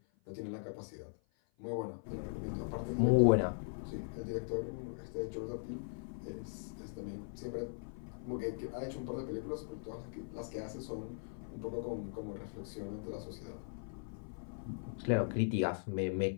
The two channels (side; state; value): right; silent; 51 dB below the other